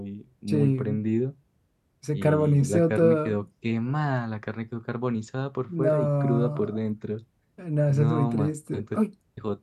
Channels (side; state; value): both; identical; correlation 1.00